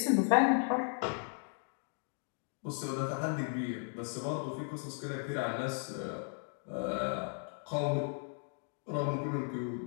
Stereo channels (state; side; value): silent; right; 54 dB below the other